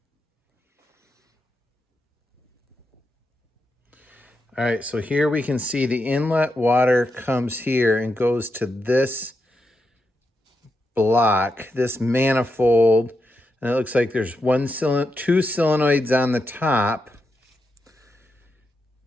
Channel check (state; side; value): normal; both; correlation 0.85